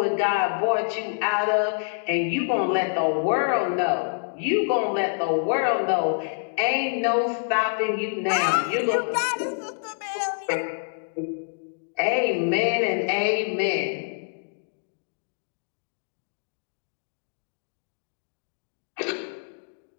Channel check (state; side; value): silent; right; digital silence